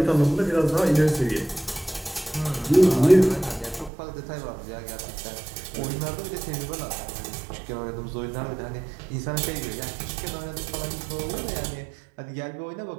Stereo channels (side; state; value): left; drops out; at 3.9 s